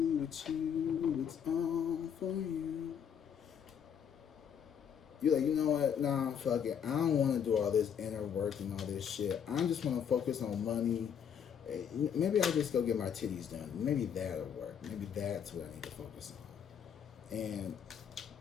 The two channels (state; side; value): quieter; right; 8.0 dB